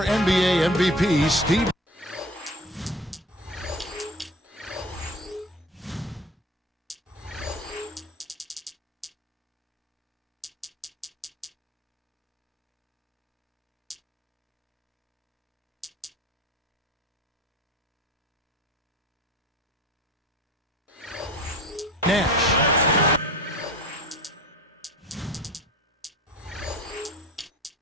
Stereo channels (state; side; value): normal; both; correlation 0.38